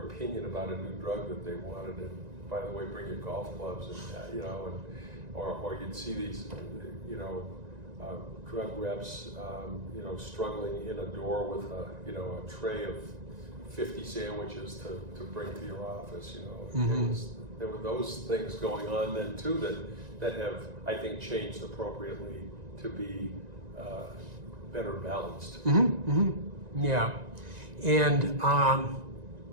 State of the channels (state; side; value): late; left; 1.9 ms